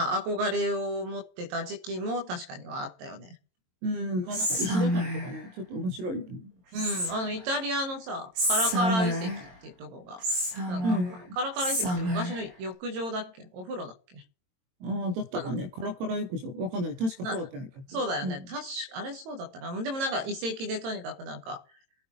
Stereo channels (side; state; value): left; late; 22 ms